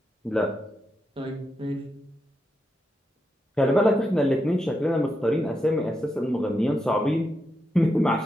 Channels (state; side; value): normal; both; correlation 0.85